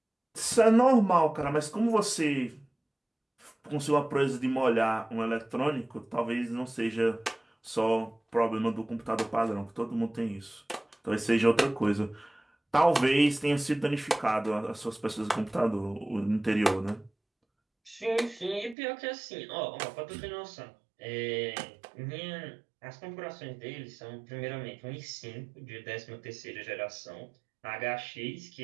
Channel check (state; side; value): drops out; left; at 18.8 s